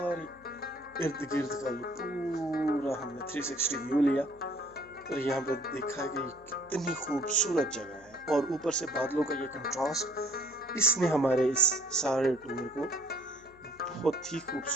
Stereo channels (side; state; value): left; noise; hum, 27 dB below the sound